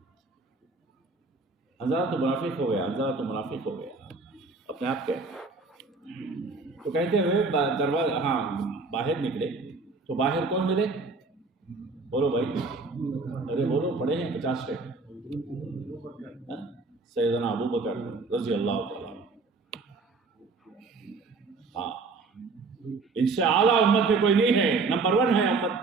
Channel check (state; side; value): quieter; left; 4.0 dB